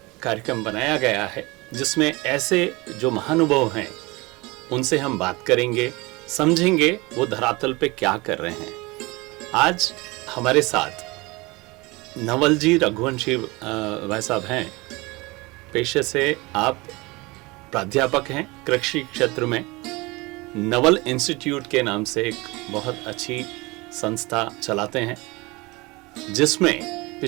कार्यक्रम बनाया गया है जिसमें ऐसे जो महानुभाव हैं उनसे हम बात करेंगे, समझेंगे वो धरातल पे क्या कर रहे हैं। आज हमारे साथ नवल जी रघुवंशी भाई साहब हैं। पेशे से आप प्राध्यापक हैं कृषि क्षेत्र में। नवल इंस्टीट्यूट के नाम से एक बहुत अच्छी संस्था चलाते हैं जिसमें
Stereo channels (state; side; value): quieter; left; 23.8 dB